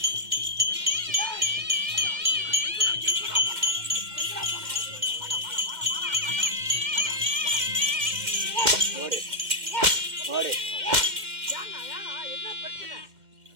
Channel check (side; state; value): left; late; 2.1 ms